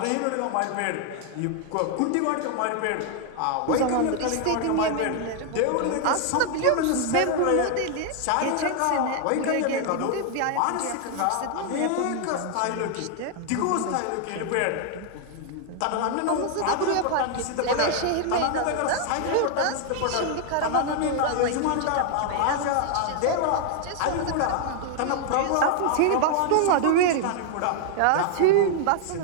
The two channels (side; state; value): both; different; correlation 0.00